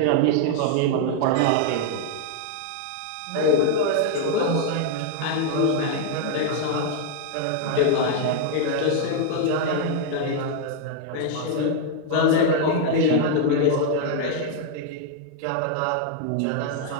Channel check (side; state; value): both; different; correlation 0.00